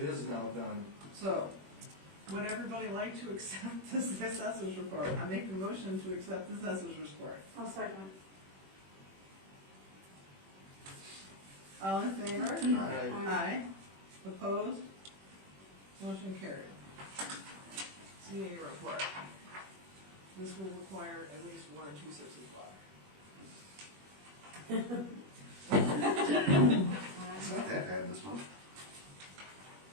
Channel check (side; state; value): left; late; 21 ms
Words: is now done. So, would everybody like to accept this assessor's report? I make a motion to accept the assessor's report. I'll second. All in favor? Aye. Aye. Opposed? Motion carried. CA report. This will require at least 1 or 2 sips of water. It's not that bad this month.